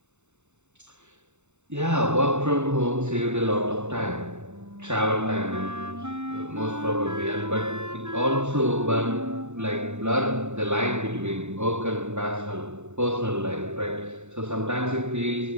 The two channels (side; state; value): left; late; 0.83 ms